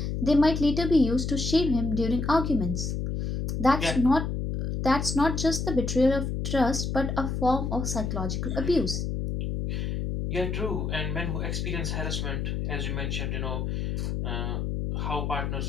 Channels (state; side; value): noise; left; hum, 2 dB below the sound